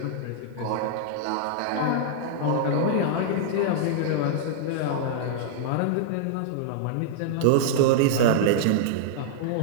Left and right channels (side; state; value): both; different; correlation -0.01